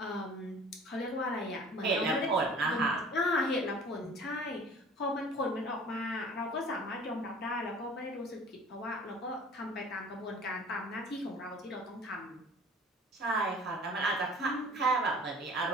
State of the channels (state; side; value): normal; both; correlation 0.46